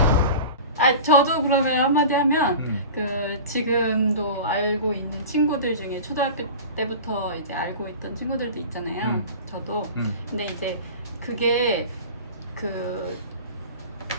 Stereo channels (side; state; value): both; inverted; correlation -0.36